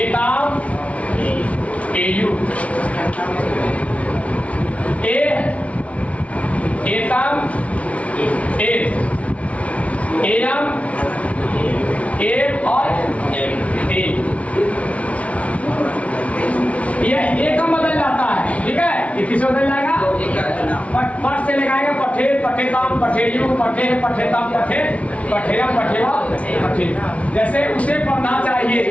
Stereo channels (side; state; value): right; late; 0.065 ms